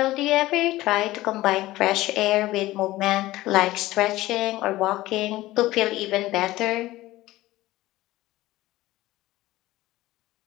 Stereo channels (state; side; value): quieter; right; 17.2 dB